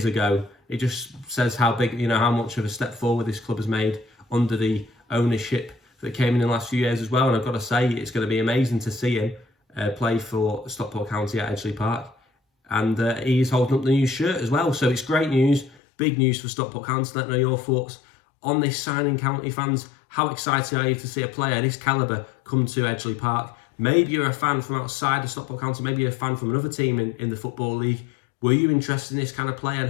ago? It just says how big, how much of a step forward this club has made under the ownership that came in the last few years as well. And I've got to say, it's going to be amazing to see him play for Stockport County at Edgeley Park. And he's holding up the new shirt as well. So it's great news, big news for Stockport County. Let me know your thoughts on this signing, County fans. How excited are you to see a player of this calibre come to Edgeley Park? Maybe you're a fan from outside of Stockport County. Maybe you're a fan from another team in the Football League. Were you interested in this kind of player?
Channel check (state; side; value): drops out; right; at 15.8 s